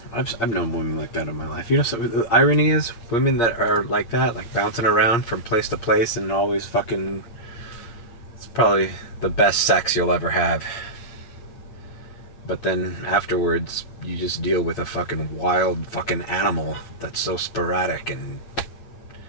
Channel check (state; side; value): late; right; 8.5 ms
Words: I've known women like that in my life. You know, so the irony is, women that are like that, like bouncing around from place to place and always fucking, it's probably the best sex you'll ever have. But then afterwards, you just deal with a fucking wild fucking animal that's so sporadic and